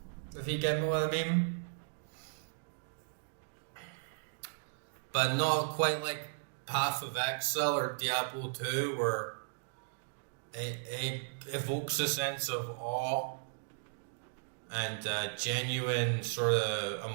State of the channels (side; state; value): left; silent; digital silence